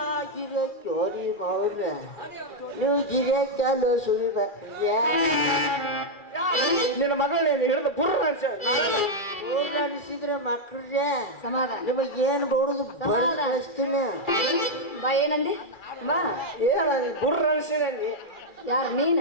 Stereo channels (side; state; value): right; late; 2.4 ms